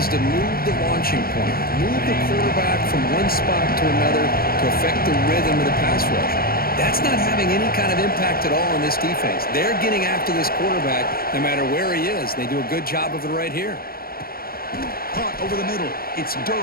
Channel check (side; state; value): right; late; 0.43 ms